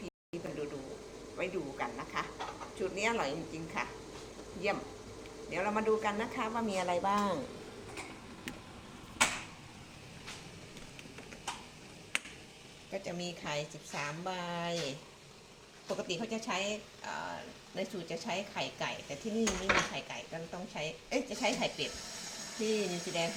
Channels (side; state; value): both; identical; correlation 1.00